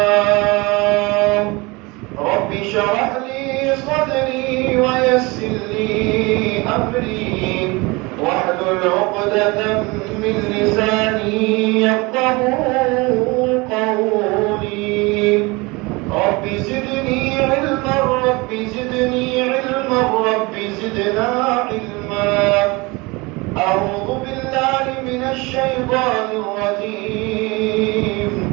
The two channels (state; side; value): quieter; left; 24.8 dB